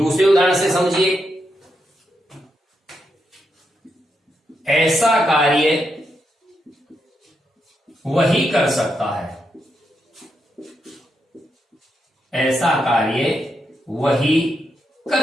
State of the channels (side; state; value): both; normal; correlation 0.83